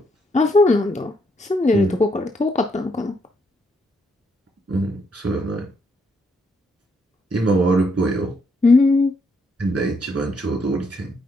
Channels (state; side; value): normal; both; correlation 0.74